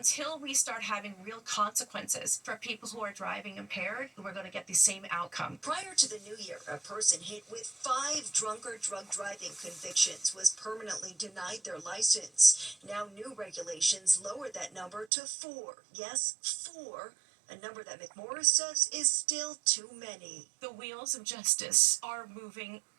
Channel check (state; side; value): drops out; left; at 15.1 s